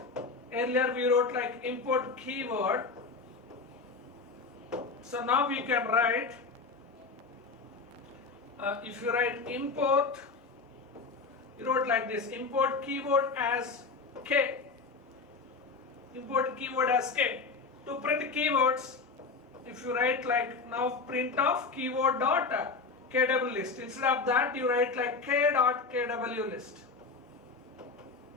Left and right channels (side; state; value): right; quieter; 4.4 dB